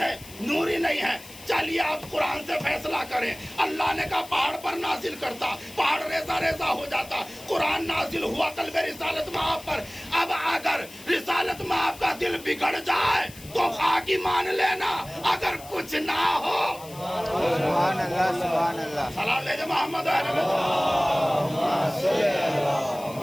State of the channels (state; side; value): noise; left; hiss, 18 dB below the sound